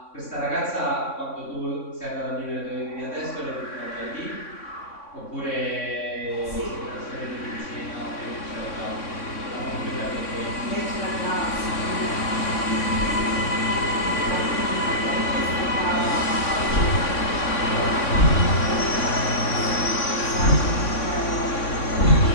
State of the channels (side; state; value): right; late; 3.6 ms